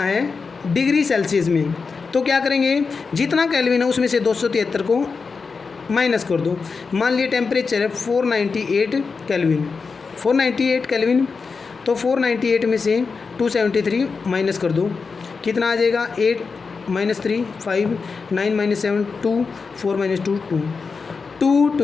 डिग्री सेल्सियस में, तो क्या करेंगे, जितना केल्विन है उसमें से 273 को माइनस कर दो। मान लिए टेम्परेचर है 498 केल्विन, तो 498 में से 273 माइनस कर दो, कितना आ जाएगा, 8 - 3 5 9 - 7 2 4 - 2 2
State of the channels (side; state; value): right; quieter; 4.9 dB